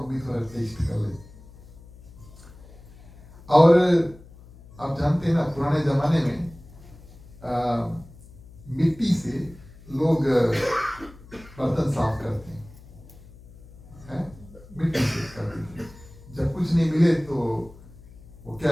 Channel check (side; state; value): left; noise; hum, 21 dB below the sound